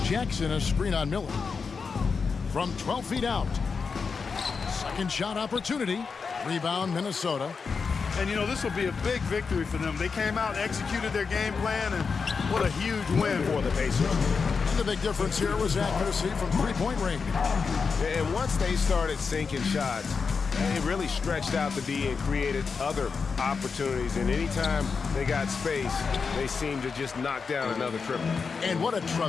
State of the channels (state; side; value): quieter; right; 5.2 dB